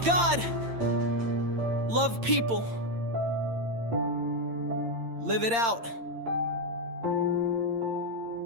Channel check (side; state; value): left; late; 8.7 ms